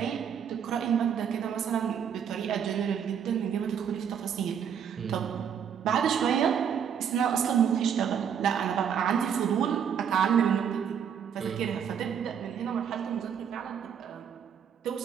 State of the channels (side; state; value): left; quieter; 8.0 dB